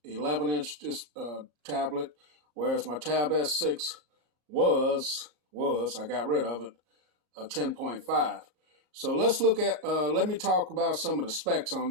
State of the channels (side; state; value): left; late; 38 ms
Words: 11-inch tablet, whereas my Tab S6 was I got rid of it, a 10.5. So let's look at let me talk about some of the specs on